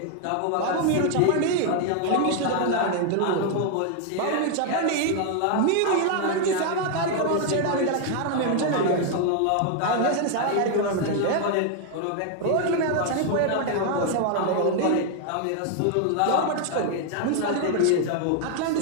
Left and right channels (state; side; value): different; both; correlation 0.00